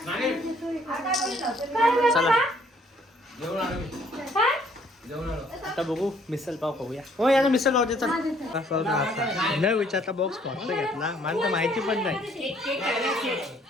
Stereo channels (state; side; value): normal; both; correlation 0.63